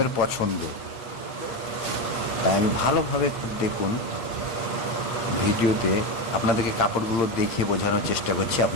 পছন্দ। তাই আমি ভালোভাবে খুব দেখুন, ভিডিওতে আপনাদেরকে কাপড়গুলো দেখে বোঝানোর চেষ্টা করছি,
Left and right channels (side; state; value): right; late; 8.8 ms